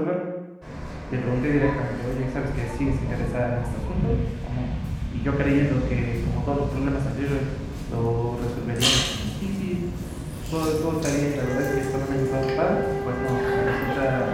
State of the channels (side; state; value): both; identical; correlation 1.00